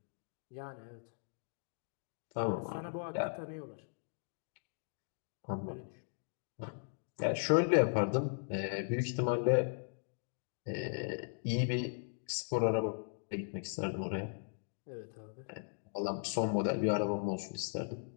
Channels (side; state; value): right; silent; digital silence